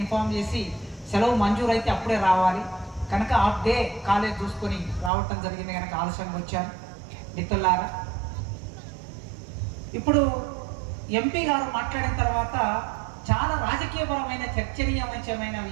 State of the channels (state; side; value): drops out; left; at 5.1 s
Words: చేసి సెలవు మంజూరు అయితే అప్పుడే రావాలి కనుక హాఫ్ డే కాలేజ్ చూసుకొని రావటం జరిగింది కనుక ఆలస్యంగా వచ్చాను. మిత్రులారా, ఇప్పుడు ఎంపీ గారు మాట్లాడిన తర్వాత చాలా రాజకీయపరమైన చర్చనీయమైన